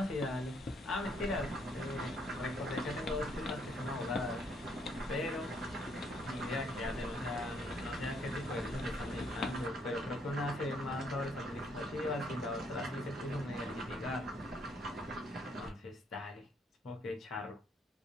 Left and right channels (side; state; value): both; normal; correlation 0.69